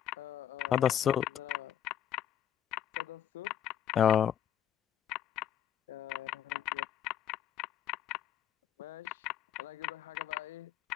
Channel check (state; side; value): quieter; right; 10.1 dB